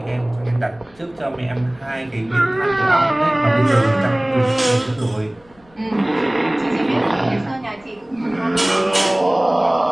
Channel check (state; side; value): noise; left; rumble, 30 dB below the sound